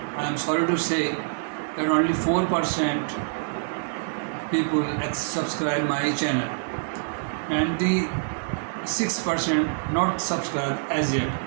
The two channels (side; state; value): left; silent; digital silence